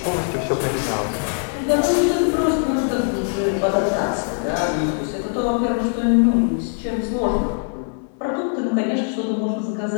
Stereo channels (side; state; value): right; silent; 65 dB below the other